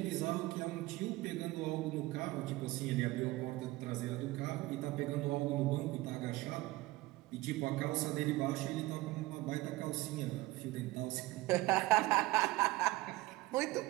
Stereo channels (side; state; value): left; quieter; 19.4 dB